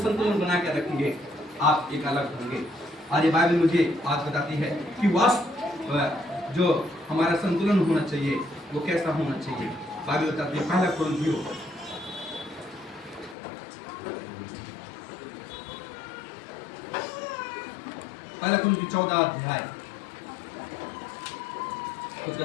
बनाकर रखेंगे आप एक अलग होंगे। आज ये बाइबल मुझे बात बताती है कि वास्तव जो हमारा संतुलन होना चाहिए वो कैसा होना चाहिए। बाइबल बताती है, पहला कुरिन्थियों 14 अध्याय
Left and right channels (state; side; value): drops out; right; at 13.4 s